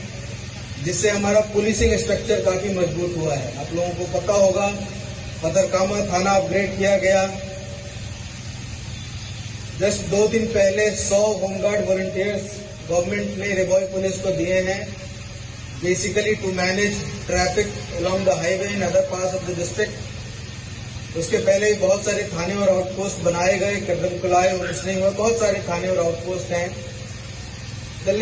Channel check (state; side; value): identical; both; correlation 1.00